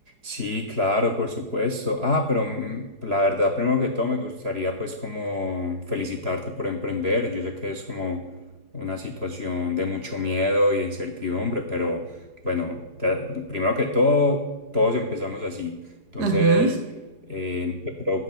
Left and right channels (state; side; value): late; left; 4.8 ms